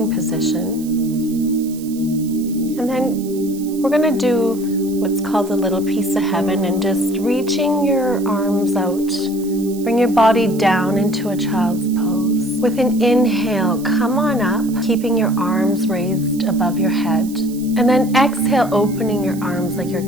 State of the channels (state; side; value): noise; right; hiss, 18 dB below the sound